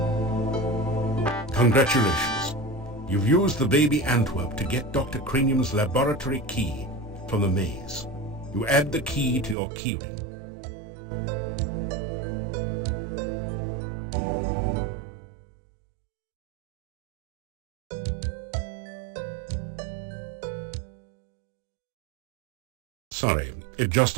Congratulations. You've used the baby Antwerp to get Dr. Cranium's laboratory key from the maze. You add the key to your keyring. Sorry, it just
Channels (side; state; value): left; drops out; at 9.6 s